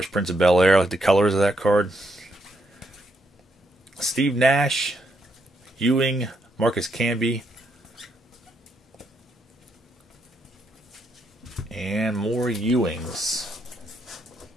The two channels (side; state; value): both; normal; correlation 0.76